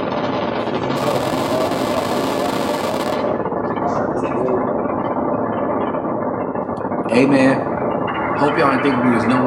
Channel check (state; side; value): identical; both; correlation 1.00